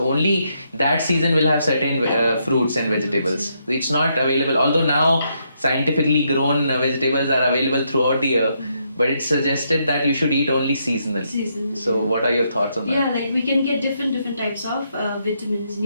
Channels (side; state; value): both; inverted; correlation -0.77